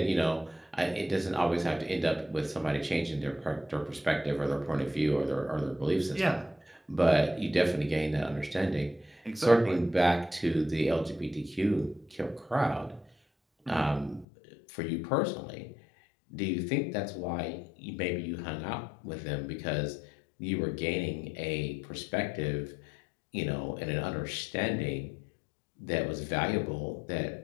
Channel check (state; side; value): drops out; right; at 14.2 s